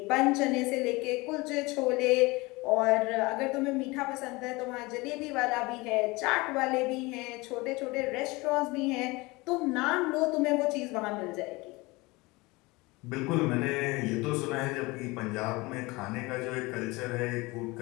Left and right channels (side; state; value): right; quieter; 23.4 dB